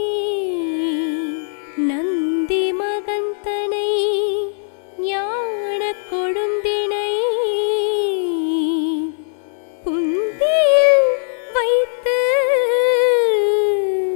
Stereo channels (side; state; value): right; silent; digital silence